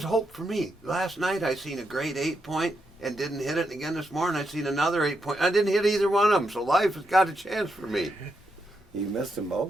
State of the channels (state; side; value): normal; both; correlation 0.82